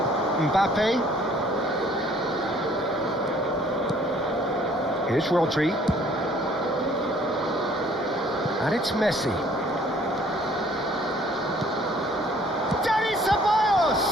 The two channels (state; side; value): normal; both; correlation 0.58